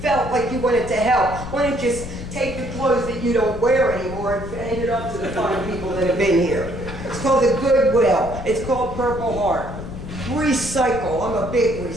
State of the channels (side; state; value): left; noise; rumble, 9 dB below the sound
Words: like you wanted to help, why don't you just take the clothes that you don't wear anymore and hand it up to the fine people that have been here. It's called the Goodwill. It's called Purple Heart. Recycle. I'm a big